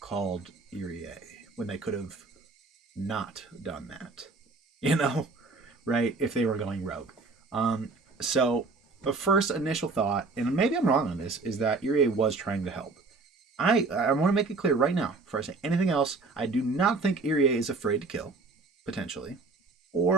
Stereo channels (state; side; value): quieter; left; 3.8 dB